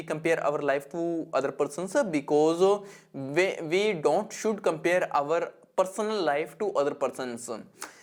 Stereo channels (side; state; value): both; identical; correlation 1.00